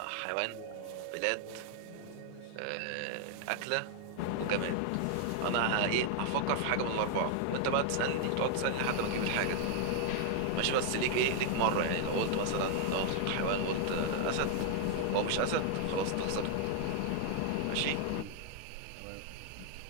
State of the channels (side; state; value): both; different; correlation 0.00